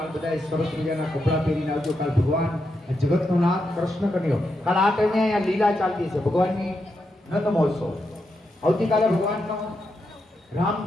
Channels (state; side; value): normal; both; correlation 0.84